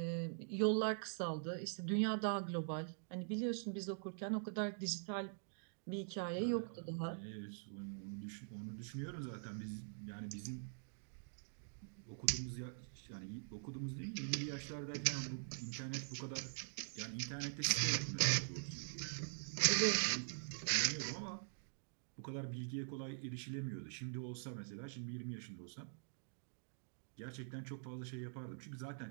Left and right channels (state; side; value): silent; left; digital silence